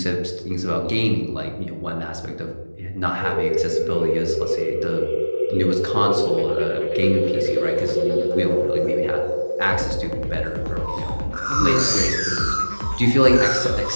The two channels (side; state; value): both; inverted; correlation -1.00